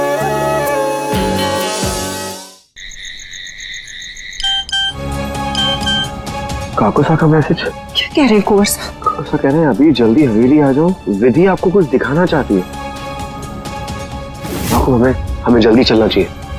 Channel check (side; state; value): both; identical; correlation 1.00